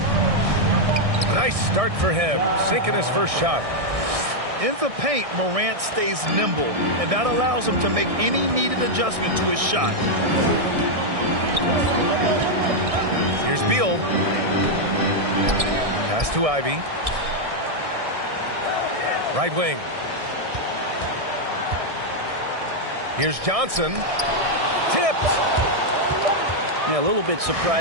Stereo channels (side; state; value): left; late; 1.6 ms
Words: Nice start for him, sinking his first shot. In the paint, Morant stays nimble, and that allows him to make any needed adjustment to his shot. Here's Beal. Pass to Ivy. Right wing. Here's Johnson. Tipped. Yeah, a little bit